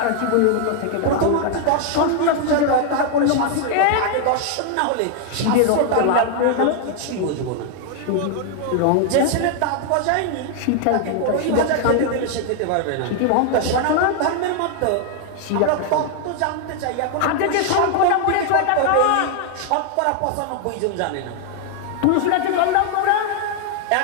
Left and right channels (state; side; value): different; both; correlation 0.00